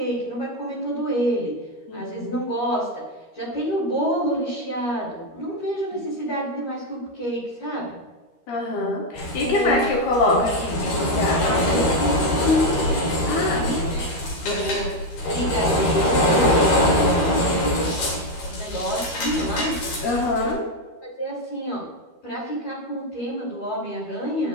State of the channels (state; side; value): late; right; 13 ms